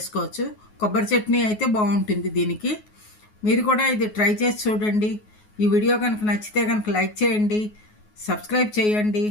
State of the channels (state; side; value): late; right; 9.4 ms